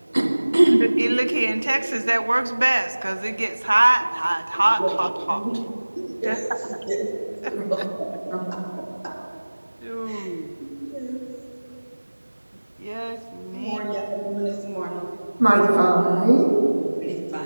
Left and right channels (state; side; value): inverted; both; correlation -1.00